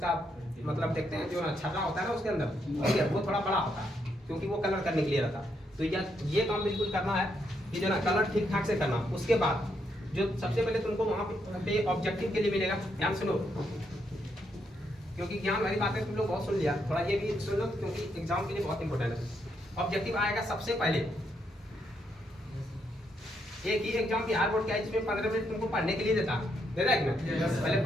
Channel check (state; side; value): normal; both; correlation 0.78